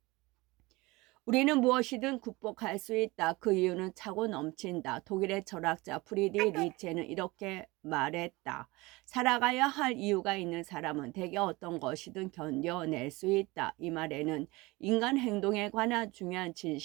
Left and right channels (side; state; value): left; quieter; 22.5 dB